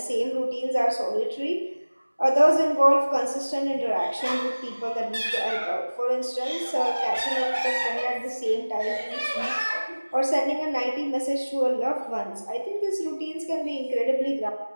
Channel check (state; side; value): inverted; both; correlation -1.00